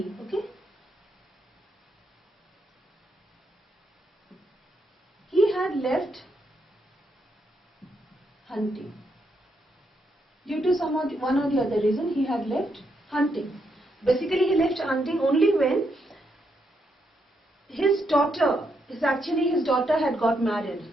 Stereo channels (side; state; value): both; normal; correlation 0.79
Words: Okay. He had left hunting. Due to one or the other reason, he had left hunting. Basically, he left hunting only when his daughter had got married